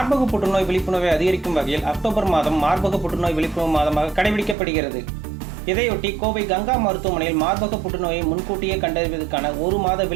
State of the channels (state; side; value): drops out; left; at 4.5 s